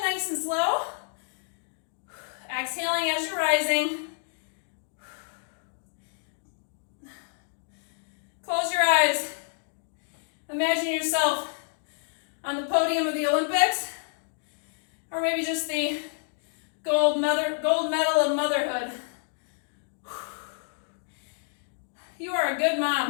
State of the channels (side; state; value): right; silent; digital silence